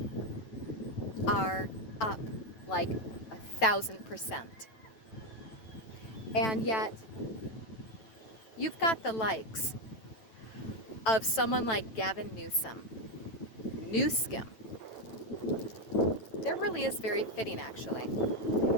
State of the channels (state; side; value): late; right; 9.2 ms